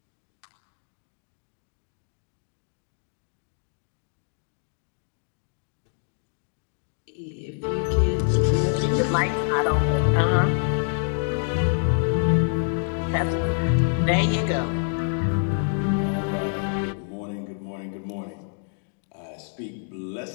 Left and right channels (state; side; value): silent; right; 61 dB below the other